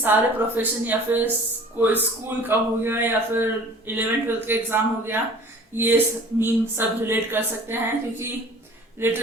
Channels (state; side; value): normal; both; correlation 0.47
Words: प्रोफेशन या फिर कोई स्कूल का हो गया या फिर 11th-12th का एग्जाम हो गया, ये मीम सब रिलेट कर सकते हैं. क्योंकि